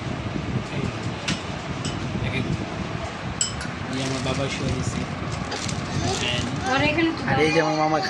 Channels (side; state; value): both; identical; correlation 1.00